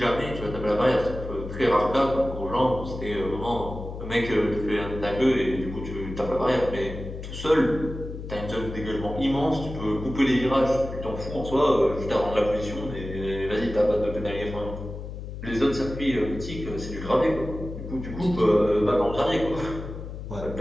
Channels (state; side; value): noise; left; hum, 9 dB below the sound